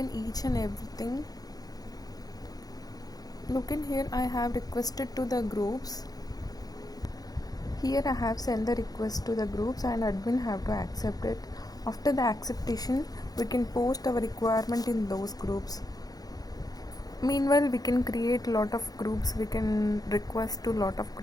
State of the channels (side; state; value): right; late; 0.18 ms